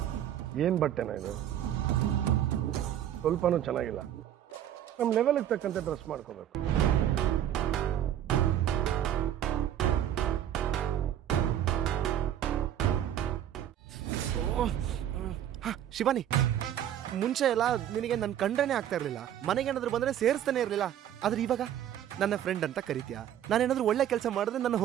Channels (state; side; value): quieter; left; 10.8 dB